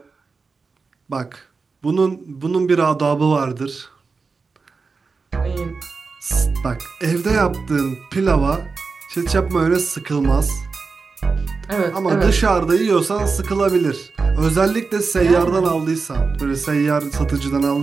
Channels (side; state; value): left; quieter; 4.5 dB